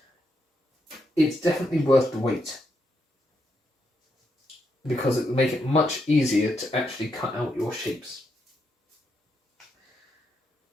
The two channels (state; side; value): normal; both; correlation 0.80